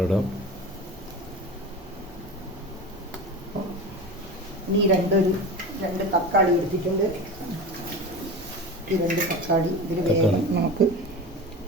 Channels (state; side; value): normal; both; correlation 0.30